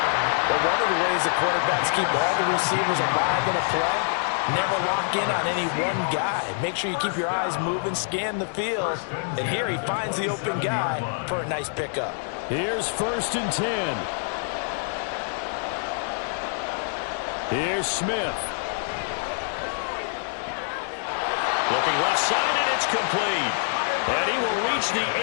But one of the ways the quarterbacks keep all the receivers alive in a play, never lock in on any one guy. Make sure you keep your eyes moving, scan the field. And here he finds the open guy for a nice pickup. Here's 1st and 10. Here's Smith. Looking left side, and it's complete. And he will reach the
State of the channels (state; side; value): silent; right; digital silence